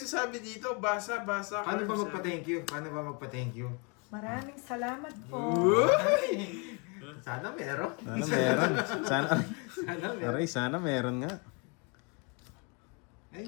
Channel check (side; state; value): right; quieter; 33.3 dB